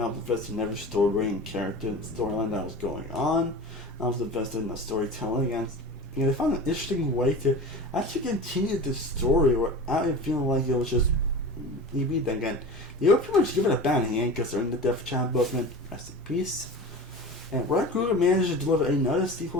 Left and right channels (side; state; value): both; normal; correlation 0.33